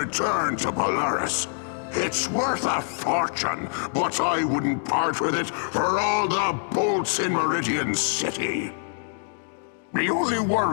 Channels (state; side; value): silent; right; digital silence